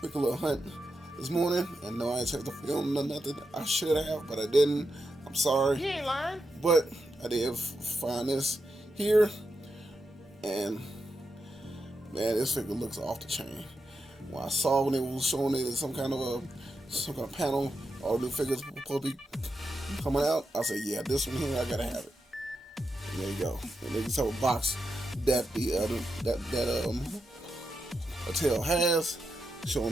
little hunt this morning, and no, I ain't checked the film or nothing. I should have, but I didn't. I'm sorry. You ain't lying. But I did find this here, and man, this figure looks off the chain. When I saw when they was showing it in some kind of panel, all the new figures supposed to be coming out, I said, yeah, this one here, I gotta have it. And there you go. And then you saw a box that the Mattel has,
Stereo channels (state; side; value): normal; both; correlation 0.87